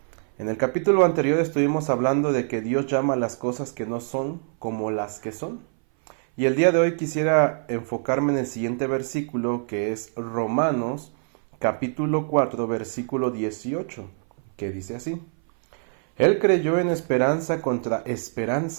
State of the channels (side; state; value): left; silent; 59 dB below the other